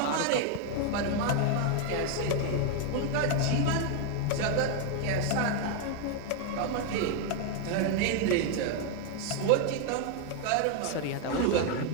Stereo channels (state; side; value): different; both; correlation 0.01